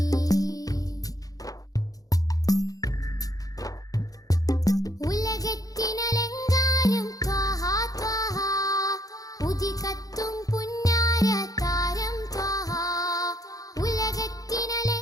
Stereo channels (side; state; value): right; late; 0.17 ms